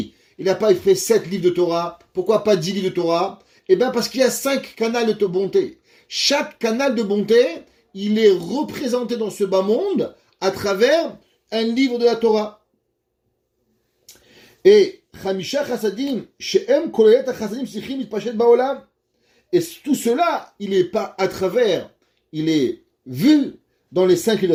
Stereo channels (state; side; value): identical; both; correlation 1.00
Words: il n'a pas fait 7 livres de Torah? Pourquoi pas 10 livres de Torah? Eh bien parce qu'il y a 5 canals de bonté. Chaque canal de bonté, il est représenté dans ce bas monde à travers un livre de la Torah. Et Chamisha Chassadim, She'em Kolelet Chassadim Sichim Mitpashet Baolam. Et tout cela, il est pas à travers, il est vu dans les 5 livres de